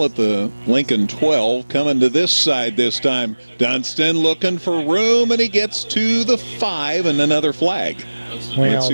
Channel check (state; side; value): inverted; both; correlation -1.00